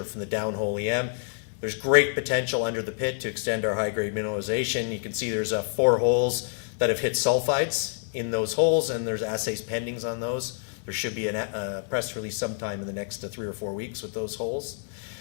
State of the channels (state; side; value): silent; right; 60 dB below the other